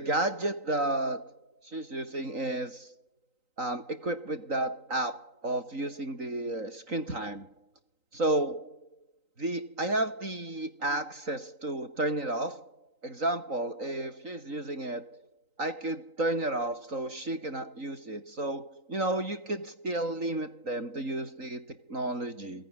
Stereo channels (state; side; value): late; left; 3.9 ms